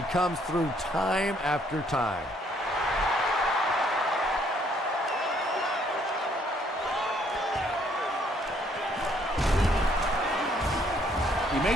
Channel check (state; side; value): normal; both; correlation 0.66